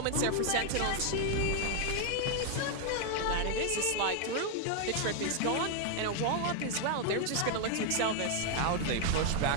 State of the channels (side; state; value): both; different; correlation 0.00